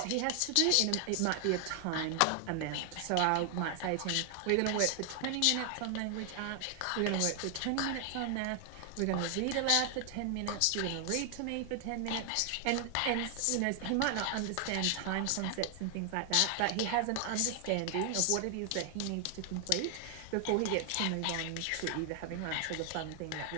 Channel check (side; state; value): both; different; correlation 0.00